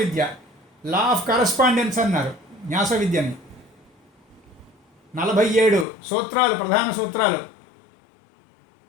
లా ఆఫ్ కరస్పాండెన్స్ అన్నారు న్యాస విద్యని. 47 సూత్రాలు, ప్రధాన సూత్రాలు.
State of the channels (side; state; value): right; drops out; at 5.9 s